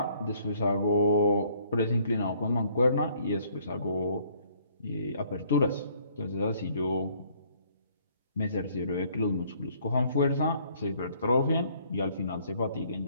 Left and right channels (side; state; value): both; inverted; correlation -0.62